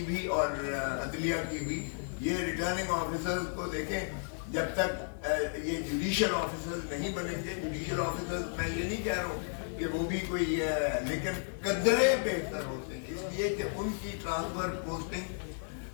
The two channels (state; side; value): silent; right; digital silence